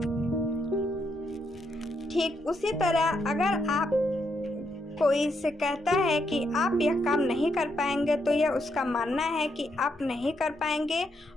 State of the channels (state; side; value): normal; both; correlation 0.78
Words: ठीक उसी तरह अगर आप कोई से कहता है कि आप यह काम नहीं कर पाएंगे, तो यह उसका मानना है कि आप नहीं कर पाएंगे,